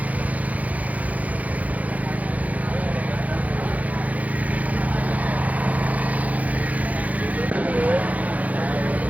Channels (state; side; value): late; left; 0.073 ms